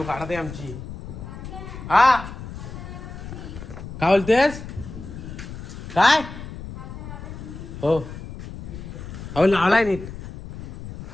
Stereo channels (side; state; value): left; noise; rumble, 11 dB below the sound